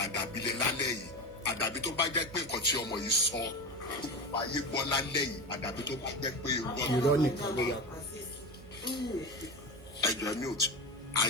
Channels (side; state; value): right; noise; hum, 22 dB below the sound